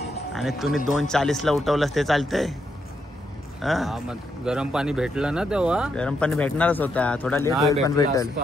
आणि तुम्ही 2:40ला उठवलंस ते चालतंय. हा, मग गरम पाणी भेटलं ना तेव्हा. गरम पाणी भेटणारच होता, थोडा लेट नाही होईल पण भेटला भेटेल.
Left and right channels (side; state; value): both; normal; correlation 0.80